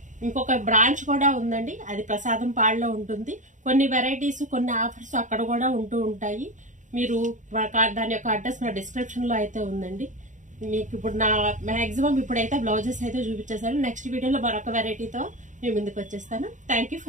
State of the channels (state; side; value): late; left; 0.36 ms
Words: ఇంకొక బ్రాంచ్ కూడా ఉందండి, అది ప్రసాదం పాడులో ఉంటుంది. కొన్ని వెరైటీస్, కొన్ని ఆఫర్స్ అక్కడ కూడా ఉంటూ ఉంటాయి. మీరు దాని యొక్క అడ్రస్ నా డిస్క్రిప్షన్ లో అయితే ఉందండి. మీకు ఇప్పుడు నా మాక్సిమం ఇప్పుడైతే బ్లౌజెస్ అయితే చూపించేసాను. నెక్స్ట్ వీడియోలో మరొక వెరైటీతో మీ ముందుకు వచ్చేస్తాను. Thank you